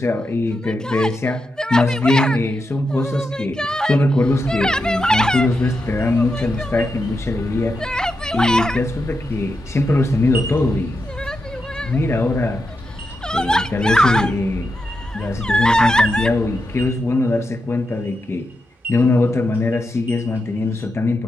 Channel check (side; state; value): both; normal; correlation 0.87